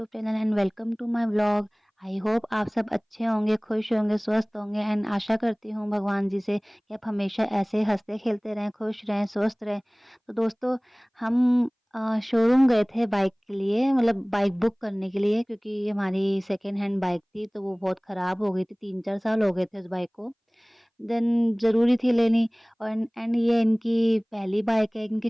channel and welcome to my vlog. I hope आप सब अच्छे होंगे, खुश होंगे, स्वस्थ होंगे एंड आशा करती हूँ भगवान जी से कि आप हमेशा ऐसे हंसते खेलते रहें, खुश रहें, स्वस्थ रहें। तो दोस्तों, हम शोरूम गए थे बाइक के लिए, मतलब बाइक बुक करने के लिए, क्योंकि हमारी सेकेंड हैंड बाइक थी तो वो बहुत ख़राब हो गई थी। 3-4 साल हो गए थे उस बाइक को। देन ज़रूरी थी लेनी। और एंड ये इनकी पहली बाइक है, इनकी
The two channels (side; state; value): both; identical; correlation 1.00